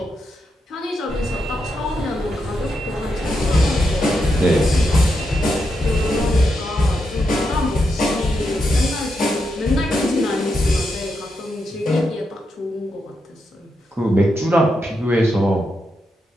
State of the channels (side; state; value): both; normal; correlation 0.84